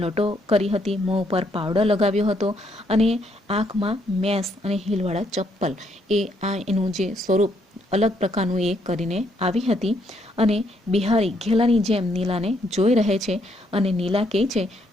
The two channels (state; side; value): normal; both; correlation 0.72